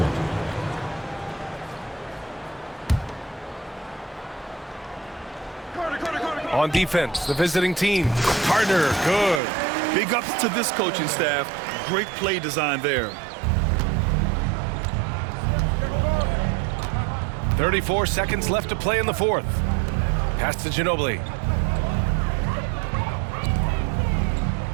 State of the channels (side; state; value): left; drops out; at 9.4 s